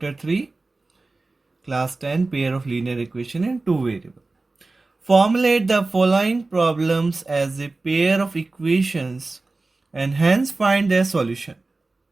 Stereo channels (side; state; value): left; quieter; 3.4 dB